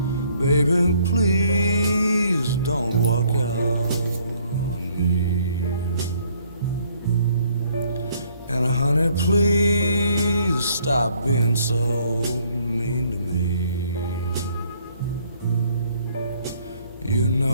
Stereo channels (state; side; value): inverted; both; correlation -0.64